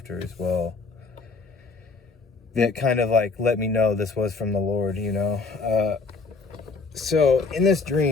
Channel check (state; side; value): quieter; right; 4.2 dB